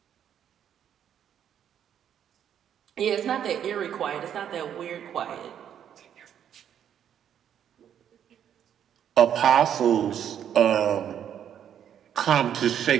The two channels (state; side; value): quieter; left; 9.4 dB